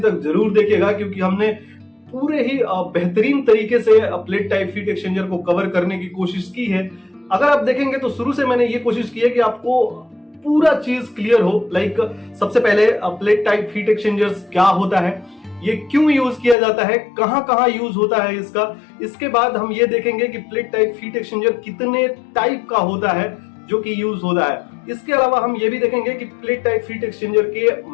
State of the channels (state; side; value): drops out; right; at 16.6 s